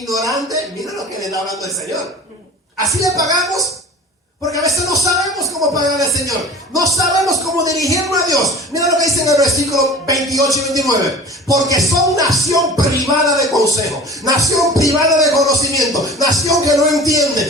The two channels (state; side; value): normal; both; correlation 0.39